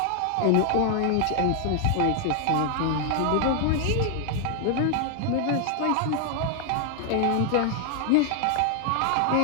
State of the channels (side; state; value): both; different; correlation 0.00